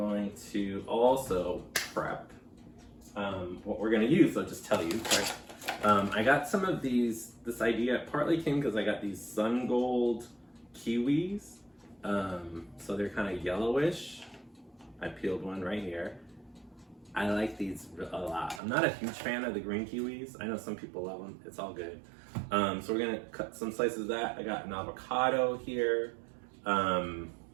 to also prep what we're going to use. I'll just tell you. I got some of these. This idea partly came because I got these sun gold kiwis. So they're kind of yellowish. I peeled one right here. I like these a lot. I'm not a huge fan of the green kiwis. I know some people love them. It's all good. So we're gonna cut some slices of that. I got an avocado here.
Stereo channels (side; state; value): left; drops out; at 18.6 s